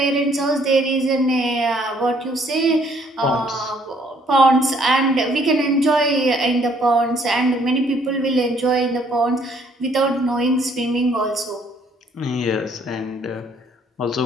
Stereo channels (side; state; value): both; normal; correlation 0.64